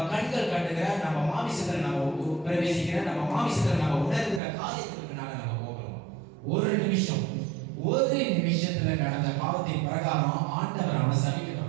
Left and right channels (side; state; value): left; drops out; at 4.4 s